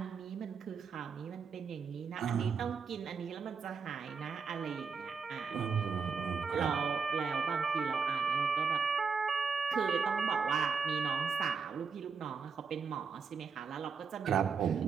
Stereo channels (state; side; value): quieter; left; 5.5 dB